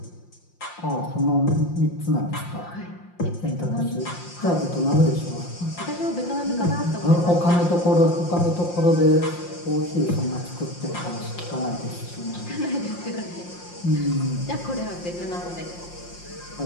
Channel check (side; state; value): right; late; 5.7 ms